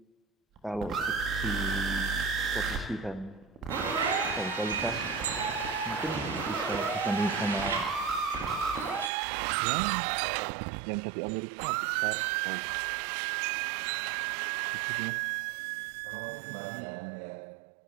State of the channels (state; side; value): drops out; left; at 9.1 s